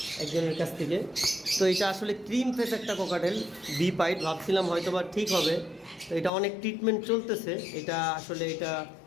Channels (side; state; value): right; drops out; at 6.3 s